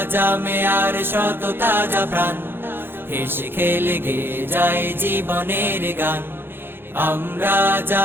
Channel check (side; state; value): left; late; 0.10 ms